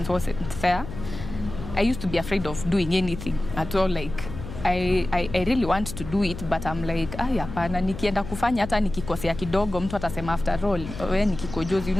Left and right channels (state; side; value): noise; left; hum, 10 dB below the sound